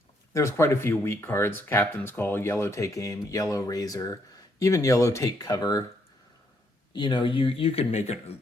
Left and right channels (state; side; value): normal; both; correlation 0.73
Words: there's quite a few weak cards. Captain's Call, Yellow Take Aim, Yellow Razor, even Yellow Take Cover. You could make a